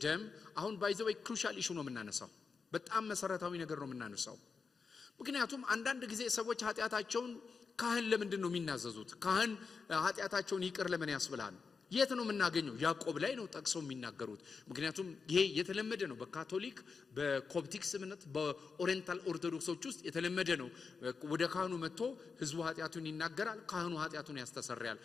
ደም አሁን ባይዘው ክሩሻል ኢሹ ነው የምናነሳው። በጣም መሰረታዊ ነገር ነው የምናነሳው። ምክንያቱም አንዳንድ ጊዜ ሰዎች ኃጢአታቸውን ካህን ለምንድን ነው የሚናዘዙት? ካህን ኃጢአታቸውን ይቅር ለምን ያስብላል? የት ነው የምናገኘው? ያዕቆብ ላይ ነው ጠቅሰው የሚናገሩት። ምክንያቱም ይሄ የተለመደ ነው በካቶሊክ በኮፕቲክስ እምነት በኦሪየንታል ኦርቶዶክሶች ውስጥ የተለመደ ነው። ወደ ካህኑ መጥቶ ህዝቡ ኃጢአቱን ይናገራል፣ ካህኑ ኃጢአቱን ያስተሰርያል።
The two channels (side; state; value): right; quieter; 5.1 dB